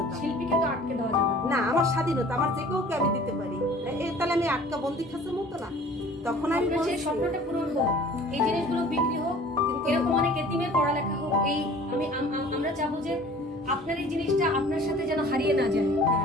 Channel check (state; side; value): normal; both; correlation 0.48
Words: শিল্পীকে তো আটকে দেওয়া যাবে না, আমার স্বাধীনতা, আমার যে কাউকে আমি দিতে পারি, তাহলে আমি আটকা বন্দি খাঁচার মতো না। তখন আমি সেই স্বপ্নটা পূরণ হোক, এই জিনিসগুলো বিক্রি হোক, এরকম অনেক এতিমের পড়ালেখা হোক, এই আমরা চাবো যে আপনার এই জিনিসটা আপনার সাথে যেন হারিয়ে না যায়।